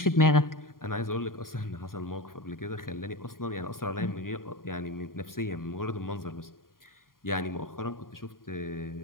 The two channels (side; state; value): right; late; 0.91 ms